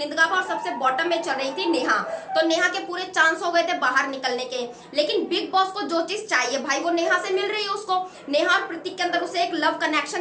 गाबा और सबसे बॉटम में चल रही थी नेहा। तो नेहा के पूरे चांस हो गए थे बाहर निकलने के, लेकिन बिग बॉस को जो चीज चाहिए भाई वो नेहा से मिल रही है उसको। नेहा और प्रतीक के अंदर उसे एक लव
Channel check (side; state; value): both; identical; correlation 1.00